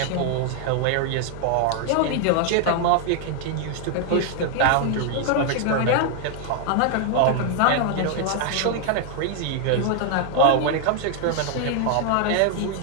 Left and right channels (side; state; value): both; different; correlation 0.00